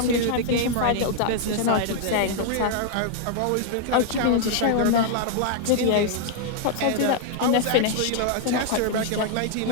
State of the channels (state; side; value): different; both; correlation 0.00